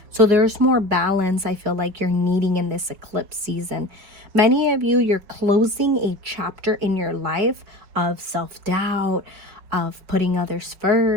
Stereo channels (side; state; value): left; late; 5.5 ms